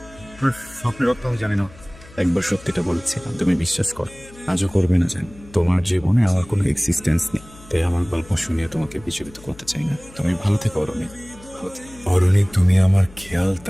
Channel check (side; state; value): left; noise; hum, 21 dB below the sound